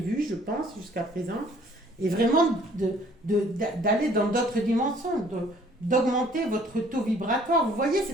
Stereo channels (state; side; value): normal; both; correlation 0.58